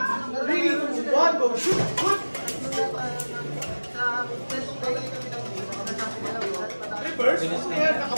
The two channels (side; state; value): both; inverted; correlation -1.00